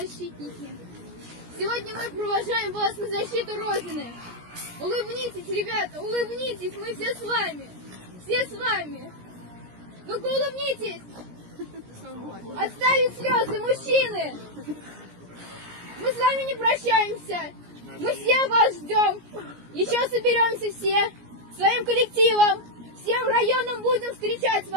сегодня мы провожаем вас на защиту Родины. Улыбнитесь, ребята, улыбнитесь, мы все с вами, все с вами. Ну-ка улыбнитесь. Отставить слезы, мужчины. Мы с вами не прощаемся. Мы все вас ждем. Еще соберемся все своим коллективом. Всем районам будем встречать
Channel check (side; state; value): left; late; 17 ms